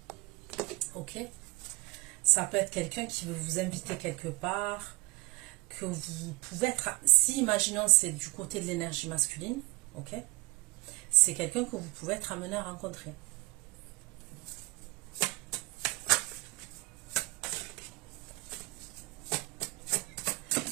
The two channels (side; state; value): left; quieter; 25.9 dB